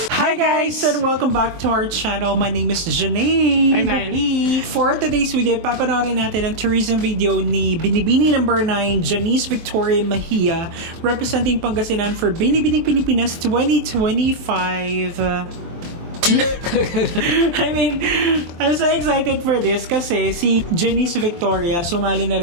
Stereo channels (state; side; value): late; left; 23 ms